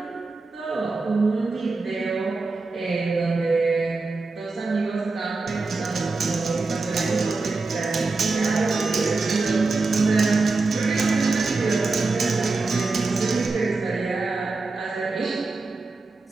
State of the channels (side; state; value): left; quieter; 3.7 dB